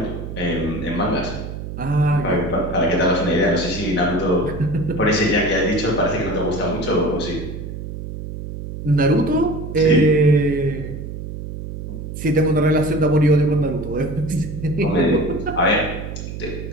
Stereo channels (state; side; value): noise; right; hum, 8 dB below the sound